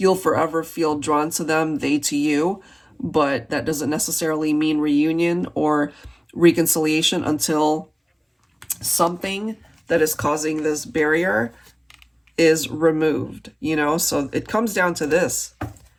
forever feel drawn to them, they to you, but that doesn't necessarily mean reunion or reconciliation until something that is causing this barrier is removed, you know? So it comes down to this,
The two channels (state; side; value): identical; both; correlation 1.00